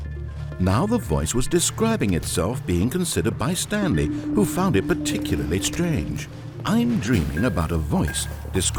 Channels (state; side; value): identical; both; correlation 1.00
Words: Now the voice was describing itself being considered by Stanley, who found it particularly strange. I'm dreaming about a voice